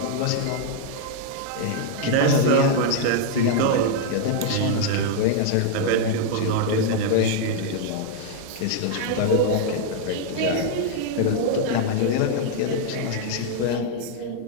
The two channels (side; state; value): both; different; correlation 0.00